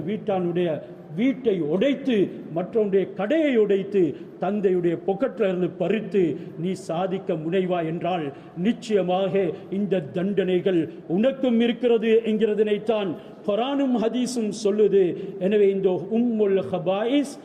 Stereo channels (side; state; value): both; identical; correlation 1.00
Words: வீட்டானுடைய வீட்டை உடைத்து மற்றவனுடைய கடையை உடைத்து தந்தையுடைய பொக்கெட்டில் இருந்து பறித்து நீ சாதிக்க முனைவா என்றால் நிச்சயமாக இந்த தண்டனைகள் உனக்கும் இருக்கிறது என்கிறதனைத்தான் குர்ஆனும் ஹதீஸும் சொல்லுது. எனவே இந்த உம்முல் ஹபாயிஸ்